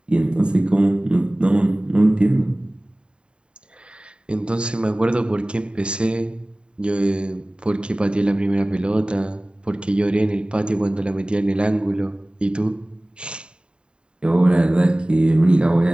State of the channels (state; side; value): late; left; 0.051 ms